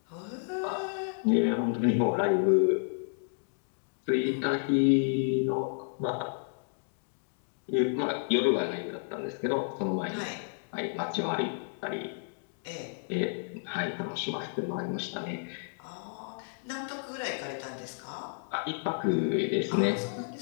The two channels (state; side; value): silent; right; digital silence